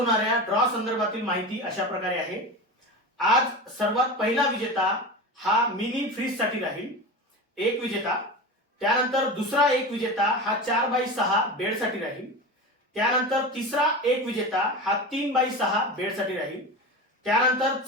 ड्रॉ संदर्भातील माहिती अशा प्रकारे आहे. आज सर्वात पहिला विजेता हा मिनी फ्रीज साठी राहील, एक विजेता. त्यानंतर दुसरा एक विजेता हा 4x6 बेड साठी राहील. त्यानंतर तिसरा एक विजेता हा 3x6 बेड साठी राहील. त्यानंतर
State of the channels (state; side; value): normal; both; correlation 0.27